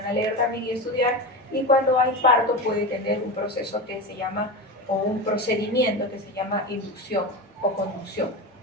a leer también y estudiar, y cuando hay parto puede tener un proceso que se llama, o un procedimiento que se llama inducción o conducción.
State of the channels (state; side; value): normal; both; correlation 0.22